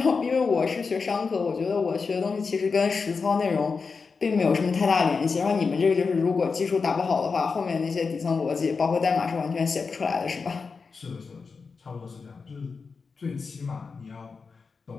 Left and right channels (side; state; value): right; quieter; 4.9 dB